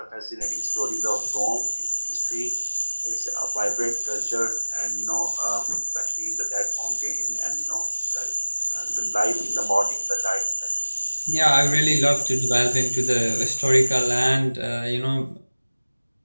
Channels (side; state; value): both; inverted; correlation -1.00